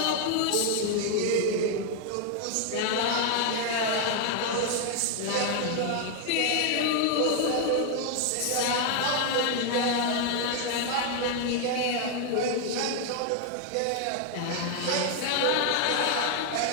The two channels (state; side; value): different; both; correlation 0.00